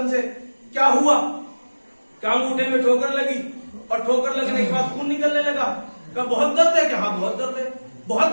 سے کیا ہوا؟ کیا انگوٹھے میں ٹھوکر لگی؟ اور ٹھوکر لگنے کے بعد خون نکلنے لگا. کہا بہت درد ہے. کہ ہاں بہت درد ہے. بہت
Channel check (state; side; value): inverted; both; correlation -1.00